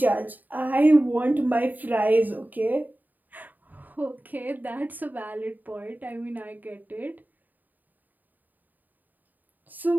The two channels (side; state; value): left; late; 0.086 ms